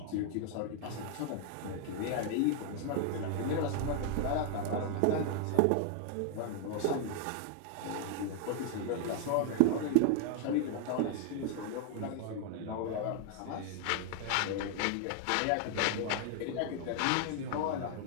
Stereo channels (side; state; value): both; different; correlation 0.00